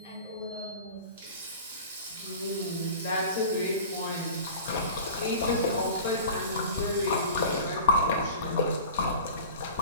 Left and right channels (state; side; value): inverted; both; correlation -0.38